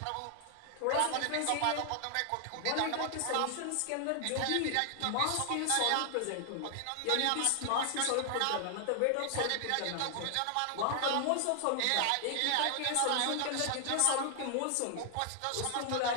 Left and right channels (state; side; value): different; both; correlation 0.00